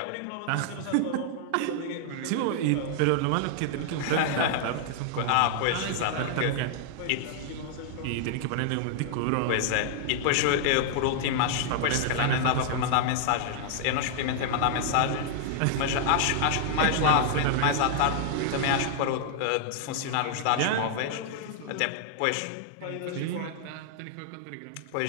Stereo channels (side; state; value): both; different; correlation -0.01